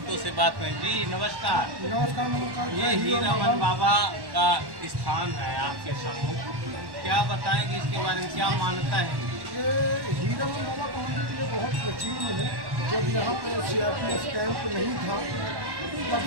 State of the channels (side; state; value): left; late; 1.1 ms